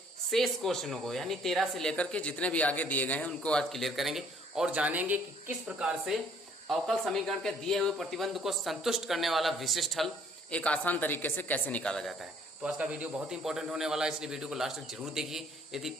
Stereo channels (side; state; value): both; normal; correlation 0.60